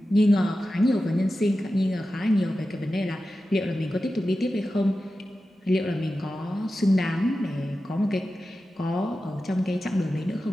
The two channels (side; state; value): both; normal; correlation 0.93